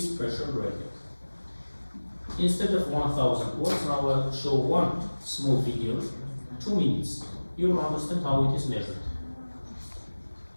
pressure gradient. Instead of 1000 words, now I'll show one small video, 2 minutes. You will understand how it is measured.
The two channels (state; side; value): inverted; both; correlation -1.00